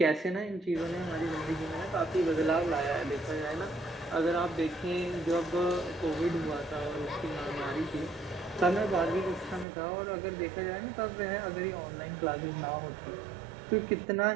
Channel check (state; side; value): drops out; left; at 9.7 s